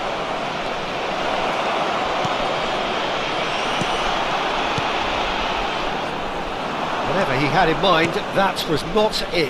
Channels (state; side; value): identical; both; correlation 1.00